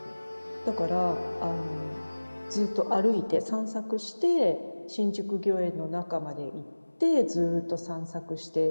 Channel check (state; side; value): inverted; both; correlation -1.00